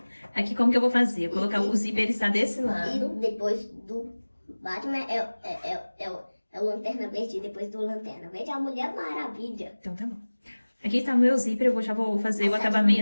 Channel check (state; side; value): inverted; both; correlation -1.00